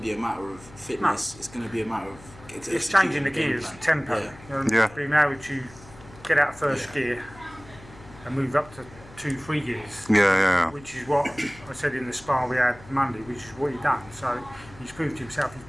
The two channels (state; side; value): noise; left; hum, 20 dB below the sound